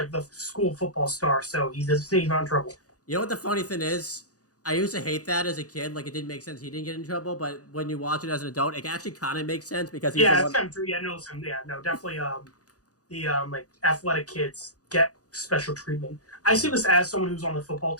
the school football star, so he's not in trouble." You know what the funny thing is? I used to hate that as a kid. Like, it didn't make sense. He didn't get in trouble, but when you watch it as an adult, it actually kind of makes sense because he's Yeah, the it's one. kind of true. Yeah, no, definitely. The like athletic kids get special treatment. I see this as someone who's on the football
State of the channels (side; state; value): right; late; 0.67 ms